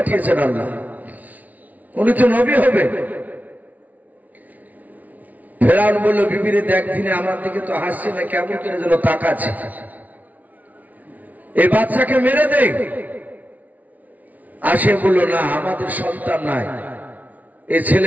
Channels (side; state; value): left; late; 0.074 ms